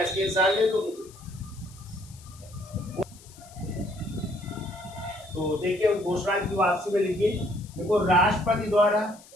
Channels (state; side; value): noise; left; hiss, 23 dB below the sound